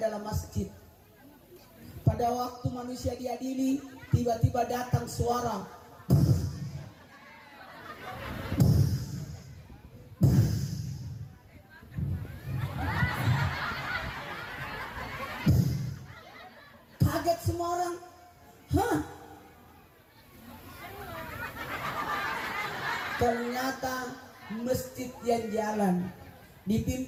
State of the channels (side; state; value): both; identical; correlation 1.00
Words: masjid. Pada waktu manusia diadili, tiba-tiba datang suara. Kaget semua orang. Hah? Ternyata masjid yang jalan